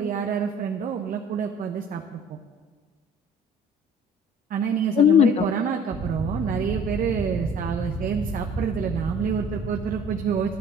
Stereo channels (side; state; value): both; normal; correlation 0.50